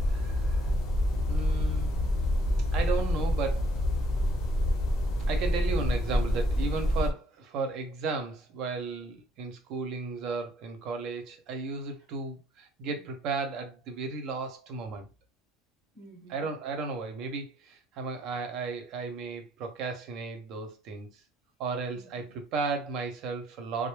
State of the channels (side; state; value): both; normal; correlation 0.68